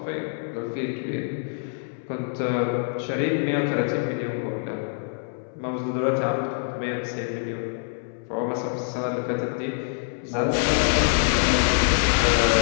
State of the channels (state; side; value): silent; right; 62 dB below the other